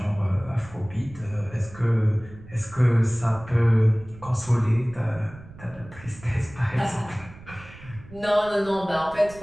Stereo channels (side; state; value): right; noise; rumble, 19 dB below the sound